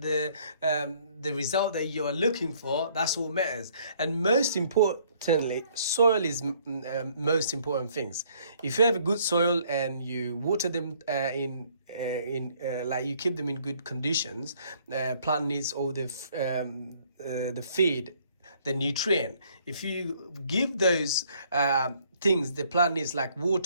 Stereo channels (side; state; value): both; inverted; correlation -0.63